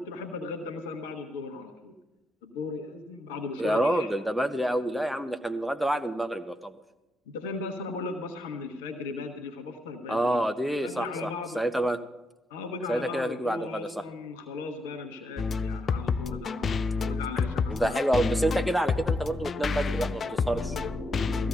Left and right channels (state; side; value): normal; both; correlation 0.81